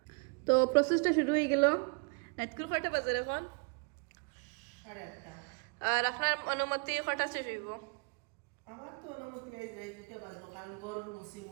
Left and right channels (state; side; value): quieter; left; 34.8 dB